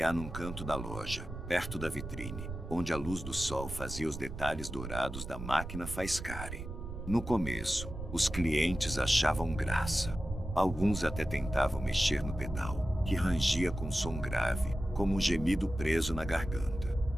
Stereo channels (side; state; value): right; noise; rumble, 8 dB below the sound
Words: num canto da loja, perto da vitrine, onde a luz do sol fazia os detalhes dourados da máquina faiscarem. No começo, os clientes achavam graça. Alguns até tentavam mexer no pedal, que rangia com som grave, como um gemido preso na garganta.